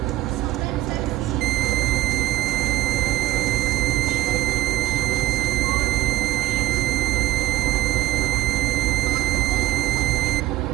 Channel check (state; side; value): quieter; left; 15.3 dB